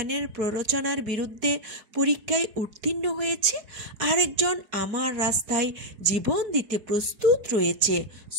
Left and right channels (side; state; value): left; late; 4.6 ms